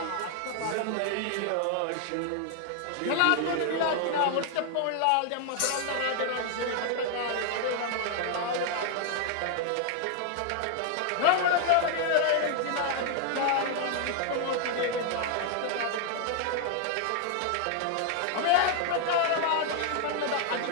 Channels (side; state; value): both; different; correlation 0.00